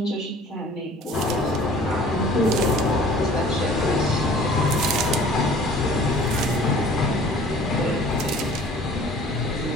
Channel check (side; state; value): both; normal; correlation 0.49